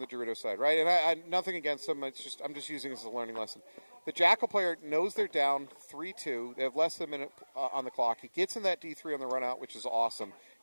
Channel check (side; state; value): both; inverted; correlation -1.00